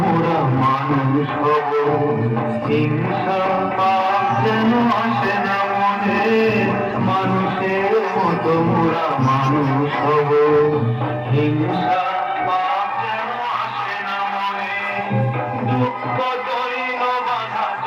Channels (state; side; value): identical; both; correlation 1.00